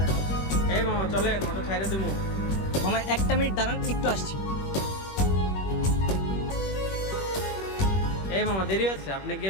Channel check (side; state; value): right; late; 21 ms